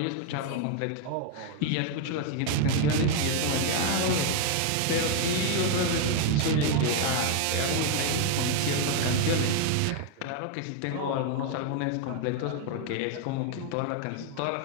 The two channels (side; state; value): both; different; correlation 0.00